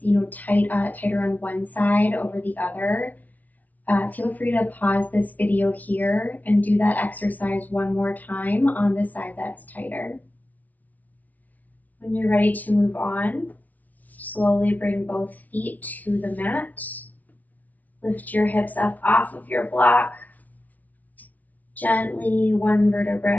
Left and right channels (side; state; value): right; late; 0.075 ms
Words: tighter on one side over the other, feel free to pause this video here and do that exercise one more time on the side that's tighter. When you're ready to move on, slowly bring both feet to the mat. Lift your hips up off of your block. Gently, one vertebra